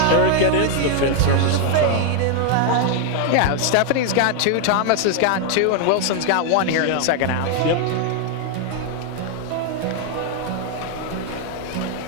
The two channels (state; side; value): different; both; correlation 0.00